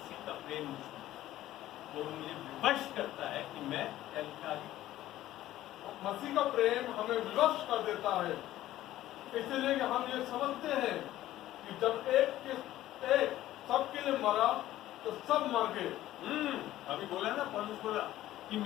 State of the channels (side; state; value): right; quieter; 14.4 dB